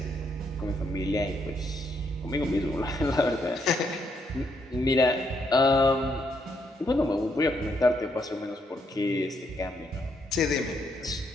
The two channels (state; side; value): normal; both; correlation 0.75